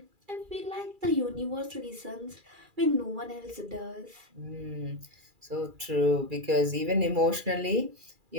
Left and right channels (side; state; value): left; late; 2.4 ms